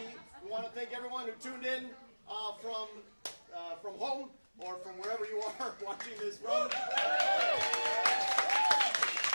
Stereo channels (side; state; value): both; inverted; correlation -1.00